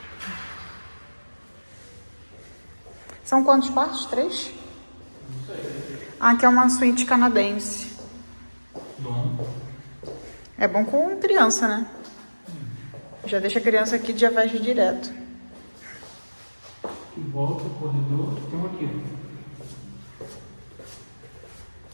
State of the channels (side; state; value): both; inverted; correlation -1.00